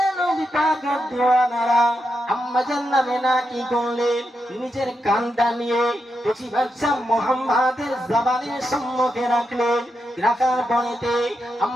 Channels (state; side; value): normal; both; correlation 0.85